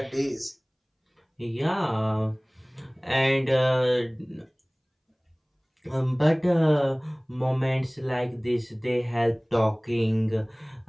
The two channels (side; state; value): both; identical; correlation 1.00